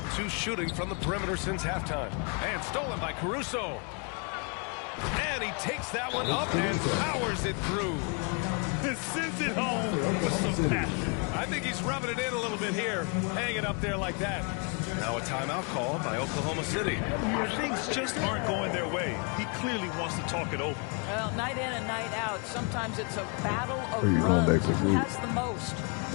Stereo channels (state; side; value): quieter; right; 35.7 dB